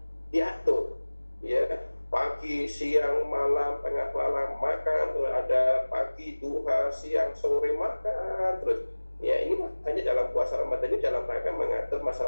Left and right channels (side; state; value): both; inverted; correlation -1.00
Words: diatur, ya. Pagi, siang, malam, tengah malam makan, terus ada pagi, duha, siang, sore makan terus. Ya, ini makanya dalam puasa Ramadan ini dalam rangka mengatur